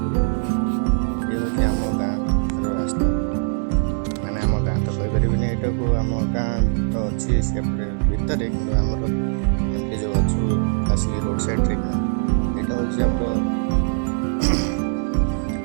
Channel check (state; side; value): silent; left; 63 dB below the other